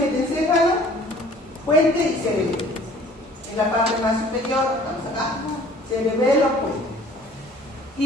Puente y cerebelo. En la parte más superior, vamos acá. Cerebelo, puente.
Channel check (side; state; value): both; normal; correlation 0.52